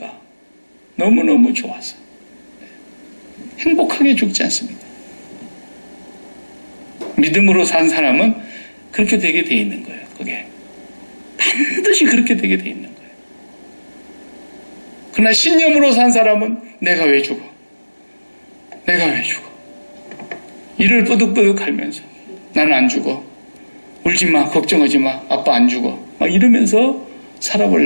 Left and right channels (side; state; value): both; inverted; correlation -1.00